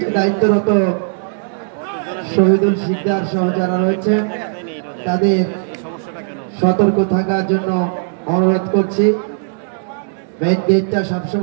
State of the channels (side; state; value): left; silent; digital silence